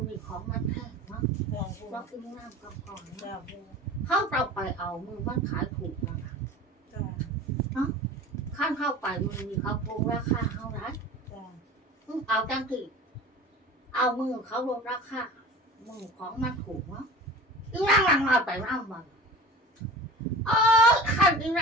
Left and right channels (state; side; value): normal; both; correlation 0.38